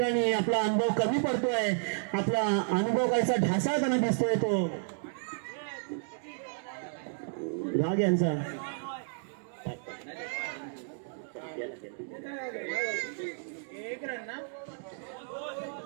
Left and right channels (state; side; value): silent; left; digital silence